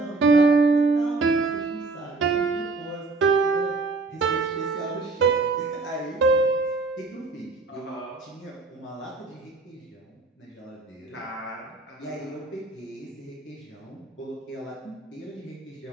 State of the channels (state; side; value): quieter; left; 3.8 dB